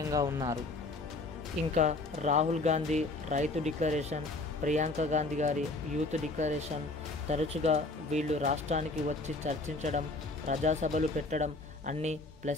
ఉన్నారు. ఇంకా రాహుల్ గాంధీ రైతు డిక్లరేషన్, ప్రియాంక గాంధీ గారి యూత్ డిక్లరేషన్, తరచుగా వీళ్ళు రాష్ట్రానికి వచ్చి చర్చించడం, ప్రజాసభలు పెట్టడం అన్నీ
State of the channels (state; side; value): quieter; right; 3.1 dB